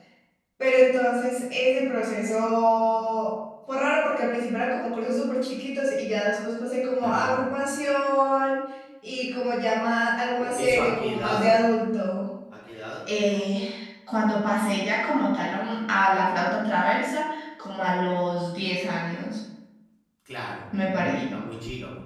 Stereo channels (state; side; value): identical; both; correlation 1.00